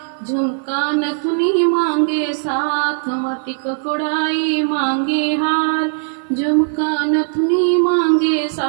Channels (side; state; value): left; silent; 62 dB below the other